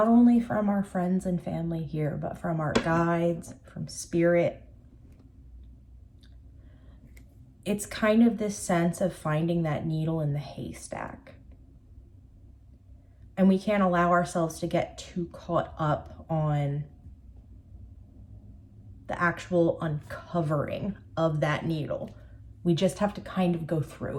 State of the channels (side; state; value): both; identical; correlation 1.00